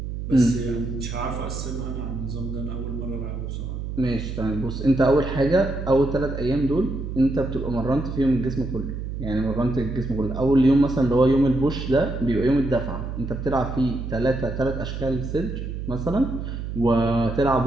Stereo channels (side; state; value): right; noise; hum, 6 dB below the sound